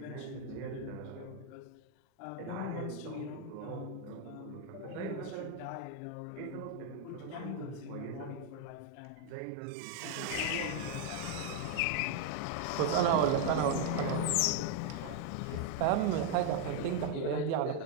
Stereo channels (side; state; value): both; different; correlation 0.00